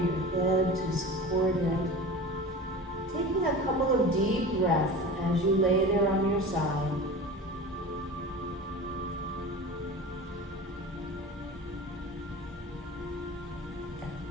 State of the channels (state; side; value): normal; both; correlation 0.34